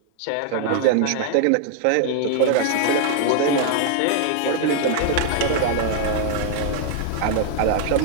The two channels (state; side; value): different; both; correlation 0.00